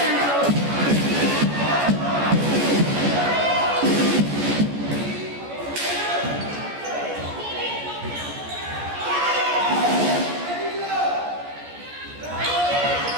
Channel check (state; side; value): late; left; 14 ms